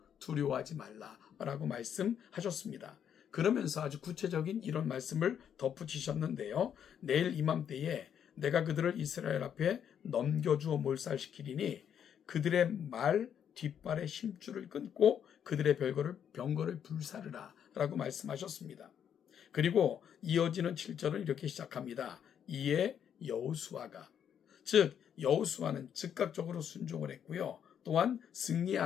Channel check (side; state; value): right; quieter; 8.7 dB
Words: 두려워하지 말라라고 말씀하셨습니다. 그러면서 아주 구체적인 이런 말씀을 덧붙이셨는데요. 내일 이맘때에 내가 그들을 이스라엘 앞에 넘겨주어 몰살시키리니 그들의 말 뒷발의 힘줄을 끊고 그들의 병거를 불사르라 라고 말씀하셨습니다. 그리고 이어지는 7절은 이렇게 시작합니다. 이에 여호수아가, 즉 여호수아는 즉각적으로 순종을 했고요. 또한